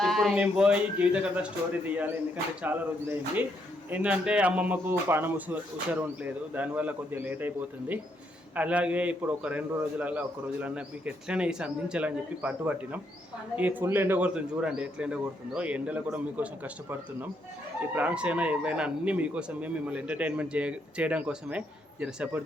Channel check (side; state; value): both; normal; correlation 0.75